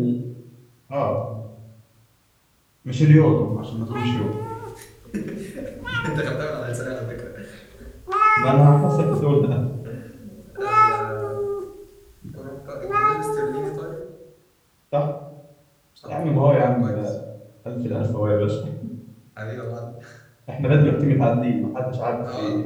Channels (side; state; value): both; identical; correlation 1.00